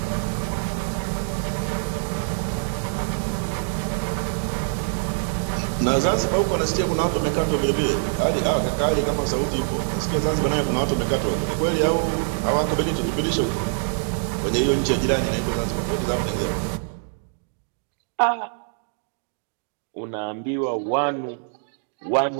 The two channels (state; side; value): silent; left; digital silence